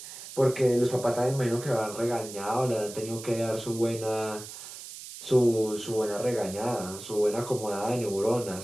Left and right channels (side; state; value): right; noise; hiss, 12 dB below the sound